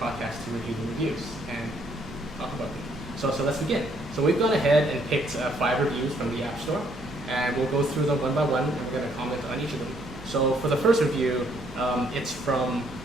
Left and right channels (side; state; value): right; noise; hum, 20 dB below the sound